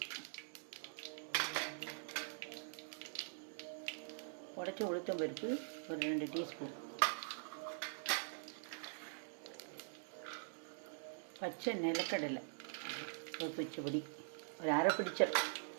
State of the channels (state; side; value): silent; left; digital silence